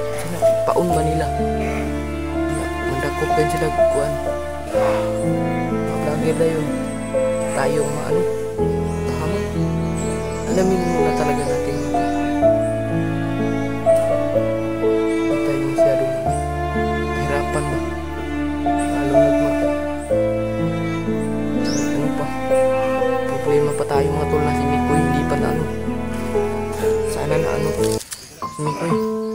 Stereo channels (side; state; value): both; identical; correlation 1.00